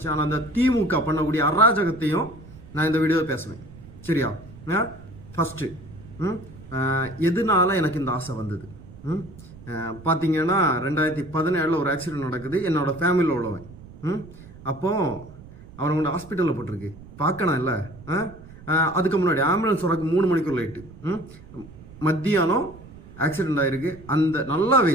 ஆனால் அந்த திமுக பண்ணக்கூடிய அராஜகத்தையும் நான் இந்த வீடியோவில் பேசுவேன். சரியா? ஃபஸ்ட்டு எதனால எனக்கு இந்த ஆசை வந்தது பார்த்தீங்கன்னா, 2017 ஒரு ஆக்சிடென்ட் நடக்குது. என்னோட ஃபேமிலியில் உள்ளவன். அப்போது அவனை கொண்டு ஹாஸ்பிட்டலில் போட்டிருக்கு. பார்க்கணும் இல்லை. அதுக்கு முன்னாடி ஆம்புலன்ஸ் வரக்கு 3 மணிக்கு லைட்டு. மத்தியானம் ஆக்சிடென்ட் ஆகிருக்கு. அந்த நல்லா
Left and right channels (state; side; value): noise; right; rumble, 18 dB below the sound